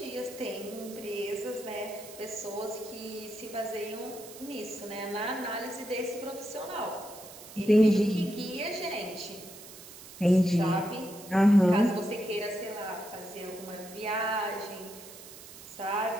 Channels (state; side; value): noise; right; hiss, 16 dB below the sound